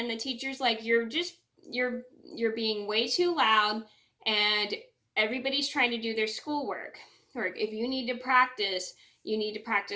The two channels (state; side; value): identical; both; correlation 1.00